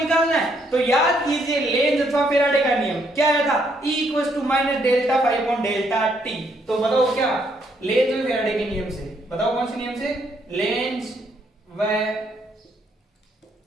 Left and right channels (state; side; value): normal; both; correlation 0.72